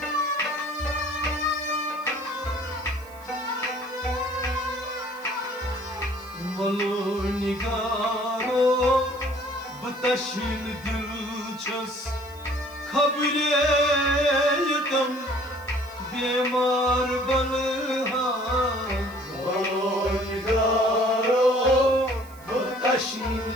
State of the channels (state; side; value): noise; right; hiss, 24 dB below the sound